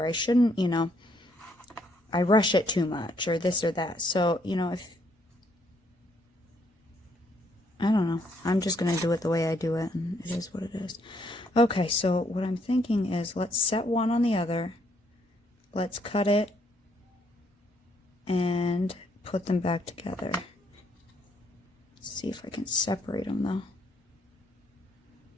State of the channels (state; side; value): normal; both; correlation 0.71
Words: I shouldn't, you know, I rush it too much, or this or that. So, you know, I don't know. I'm just going to do it the way I do it, and it is what it is. Okay, so what I'm thinking is, let's set one on the other. Let's cut it and put them back together. Let's see if I can separate them, though.